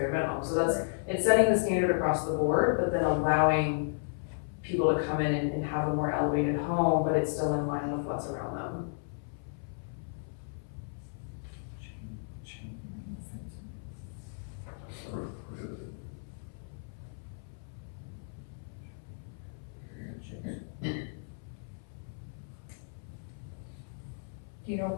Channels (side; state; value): right; silent; 55 dB below the other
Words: minimum. So it's setting the standard across the board, but then allowing people to come in and have a more elevated home, but it's still in line with what's around them. Do you know